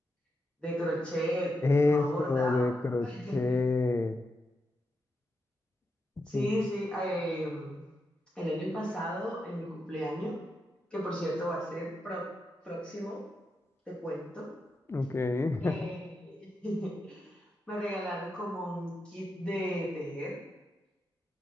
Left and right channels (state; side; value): normal; both; correlation 0.85